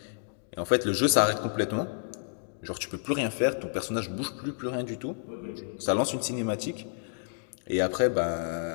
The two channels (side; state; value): right; silent; digital silence